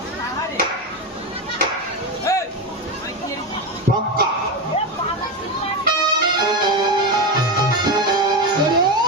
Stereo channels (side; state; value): both; normal; correlation 0.15